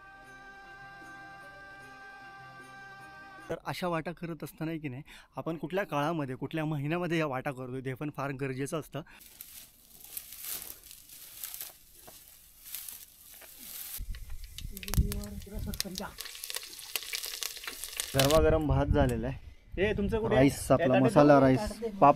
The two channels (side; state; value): both; identical; correlation 1.00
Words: तर अशा वाटा करत असताना की नाही आपण कुठल्या काळामध्ये कुठल्या महिन्यामध्ये या वाटा करतो ते पण फार गरजेचं असतं. गरमागरम भात झालेला आहे. हे तुमचं कुठे राईस, आपला मसाला राईस,